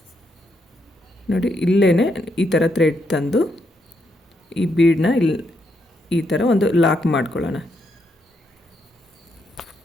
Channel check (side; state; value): both; normal; correlation 0.78